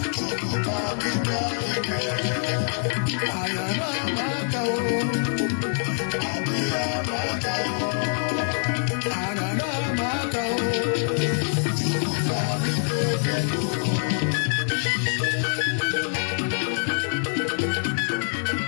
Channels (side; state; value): right; silent; 60 dB below the other